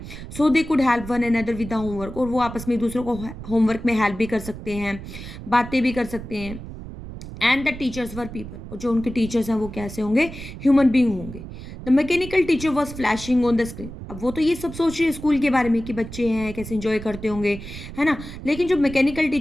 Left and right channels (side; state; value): right; noise; rumble, 11 dB below the sound